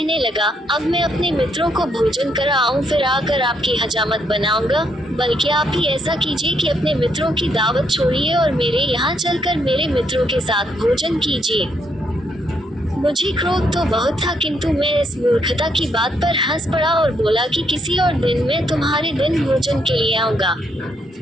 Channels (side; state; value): both; normal; correlation 0.75